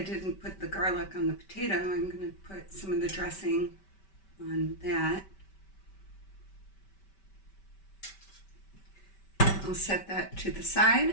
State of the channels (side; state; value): right; late; 5.2 ms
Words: put the garlic on the potato, I'm going to put some of the dressing on that. I'll set that to the